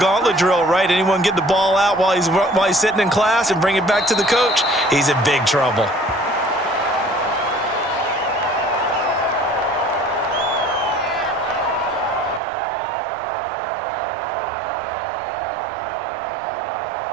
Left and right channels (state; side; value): drops out; left; at 12.4 s